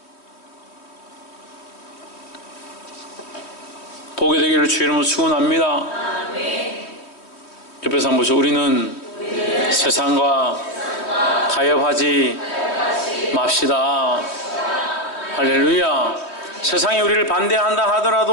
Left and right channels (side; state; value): right; late; 3.1 ms